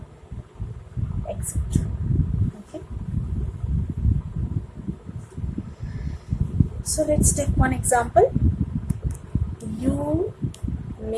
etc. Okay, so let's take one example. You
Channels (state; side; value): identical; both; correlation 1.00